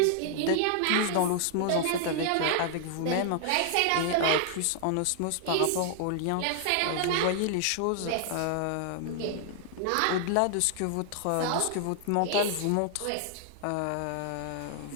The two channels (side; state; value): both; different; correlation -0.01